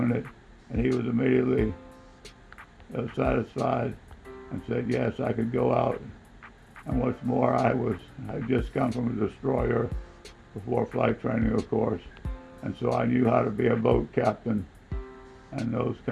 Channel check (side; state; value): both; identical; correlation 1.00